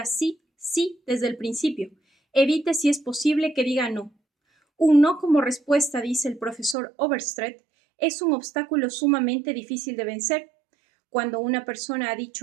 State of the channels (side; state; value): left; drops out; at 6.8 s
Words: sí, sí desde el principio. Evite, si es posible, que diga no. Un no como respuesta, dice el profesor Overstreet, es un obstáculo sumamente difícil de vencer. Cuando una persona ha